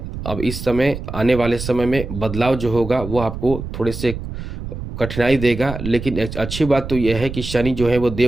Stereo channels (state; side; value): noise; right; rumble, 8 dB below the sound